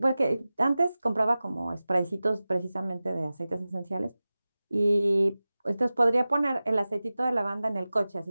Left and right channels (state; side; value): inverted; both; correlation -0.96